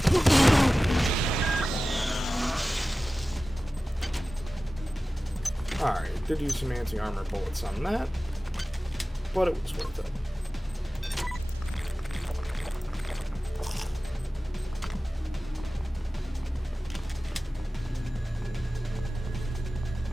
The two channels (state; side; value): normal; both; correlation 0.96